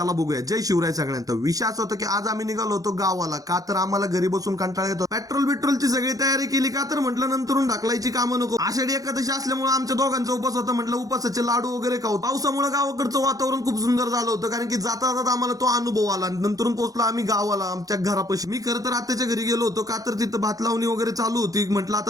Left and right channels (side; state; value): left; late; 0.17 ms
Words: बघूया. जय शिवराय सगळ्यांना. विषय असा होता की आज आम्ही निघालो होतो गावाला. का तर आम्हाला घरी बसून कंटाळा येतो. पेट्रोलची सगळी तयारी केली. का तर म्हटलं नंतरून ढकलायची कामं नको. आषाढी एकादशी असल्यामुळे आमच्या दोघांचा उपास होता. म्हटलं उपासाचे लाडू वगैरे खाऊ. पावसामुळे गावाकडचं वातावरण खूप सुंदर झालं होतं. कारण की जाता जाता आम्हाला तो अनुभव आला. नंतरून पोहोचलो आम्ही गावाला आमच्या घरापाशी. मी खरं तर आत्याच्या घरी गेलो होतो. का तर तिथं भात लावणी वगैरे चालू होती. म्हटलं